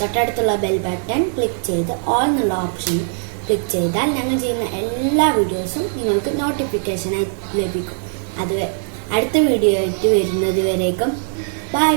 ബെൽ ബട്ടൺ ക്ലിക്ക് ചെയ്ത് ഓൾ എന്നുള്ള ഓപ്ഷൻ ക്ലിക്ക് ചെയ്താൽ ഞങ്ങൾ ചെയ്യുന്ന എല്ലാ വീഡിയോസും നിങ്ങൾക്ക് നോട്ടിഫിക്കേഷനായി ലഭിക്കും. അടുത്ത വീഡിയോ ആയിട്ട് വരുന്നത് വരേക്കും ബൈ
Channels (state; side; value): silent; left; 56 dB below the other